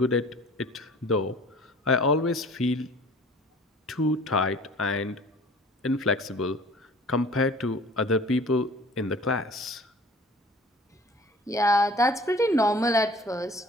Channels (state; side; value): normal; both; correlation 0.48